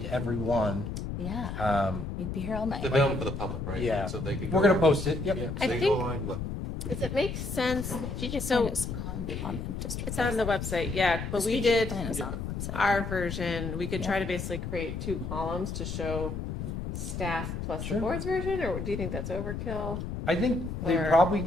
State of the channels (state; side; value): noise; left; rumble, 5 dB below the sound